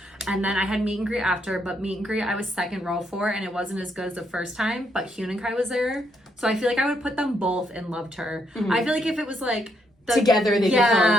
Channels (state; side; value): normal; both; correlation 0.75